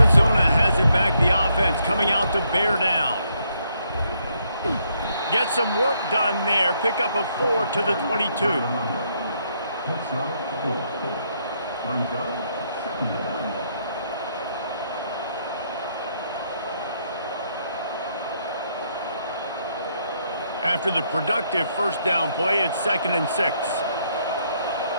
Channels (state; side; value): inverted; both; correlation -0.73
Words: has it back, the offense coming out to bear down. Get some work done there. Pick up a 4 to the 22. After the productive 1st down play, it's 2nd and 6.